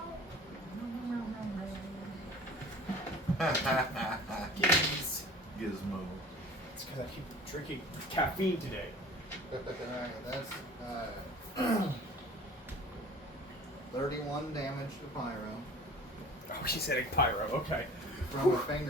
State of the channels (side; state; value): both; normal; correlation 0.44